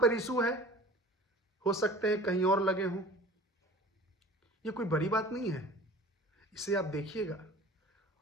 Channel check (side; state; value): both; normal; correlation 0.43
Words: इशू है, हो सकते हैं कहीं और लगे हों। ये कोई बड़ी बात नहीं है, इसे आप देखिएगा।